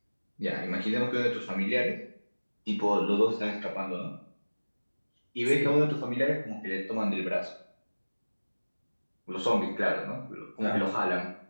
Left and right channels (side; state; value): both; inverted; correlation -1.00